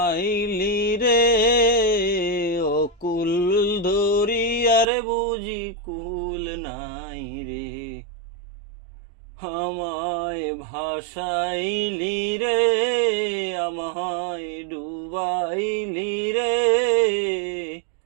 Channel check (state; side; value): drops out; left; at 4.9 s